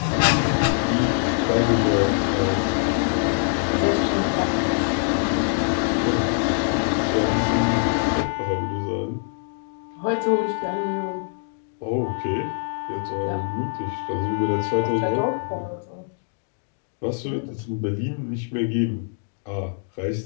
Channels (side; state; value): right; silent; 63 dB below the other